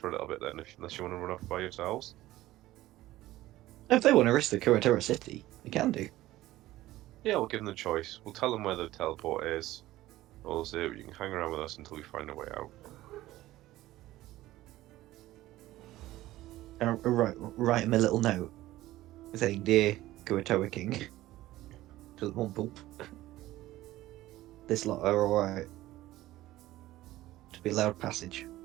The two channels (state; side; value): quieter; left; 16.1 dB